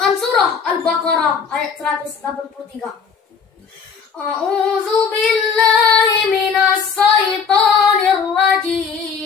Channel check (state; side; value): quieter; right; 6.1 dB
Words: surah Al-Baqarah ayat 183. A'udzu billahi minas syaitonir